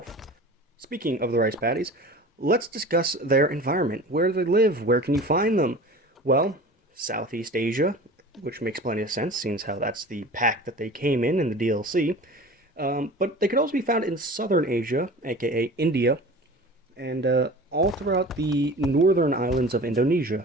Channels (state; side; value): normal; both; correlation 0.38